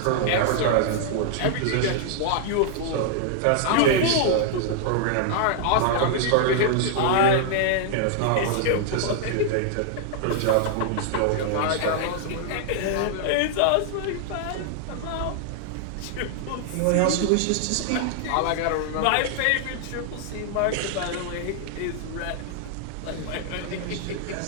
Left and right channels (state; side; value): different; both; correlation -0.01